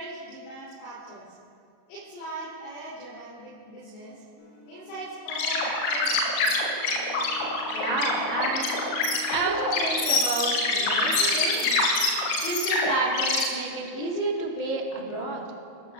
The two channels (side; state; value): right; late; 38 ms